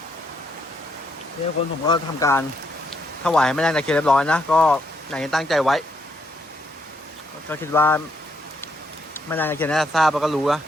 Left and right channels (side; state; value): both; normal; correlation 0.75